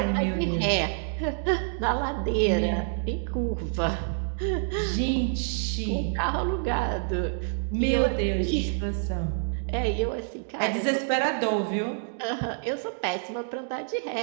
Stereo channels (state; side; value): silent; left; digital silence